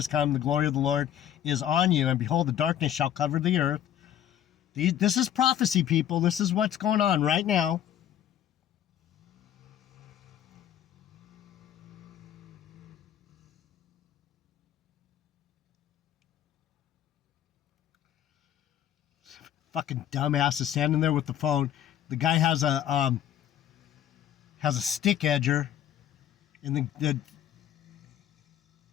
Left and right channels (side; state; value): right; quieter; 10.6 dB